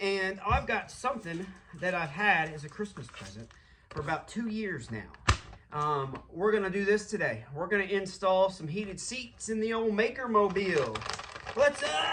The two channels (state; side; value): identical; both; correlation 1.00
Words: I've got something that I've had as a Christmas present for about 2 years now. We're gonna do this today. We're gonna install some heated seats in the old Maker Mobile.